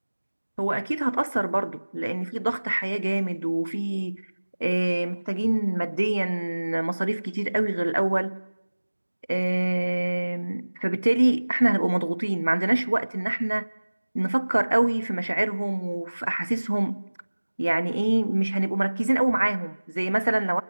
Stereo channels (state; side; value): inverted; both; correlation -1.00